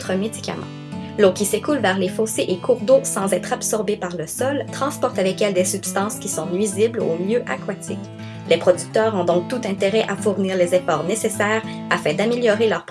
médicaments. L'eau qui s'écoule vers les fossés et cours d'eau sans être absorbée par le sol transporte avec elle des substances qui sont nuisibles aux milieux aquatiques. Les producteurs ont donc tout intérêt à fournir les efforts nécessaires afin d'améliorer leurs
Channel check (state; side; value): identical; both; correlation 1.00